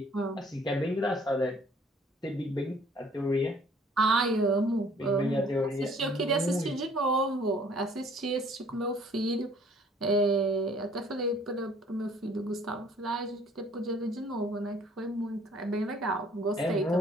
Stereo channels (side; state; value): both; normal; correlation 0.57